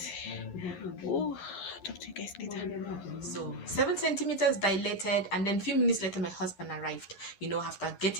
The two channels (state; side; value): late; right; 11 ms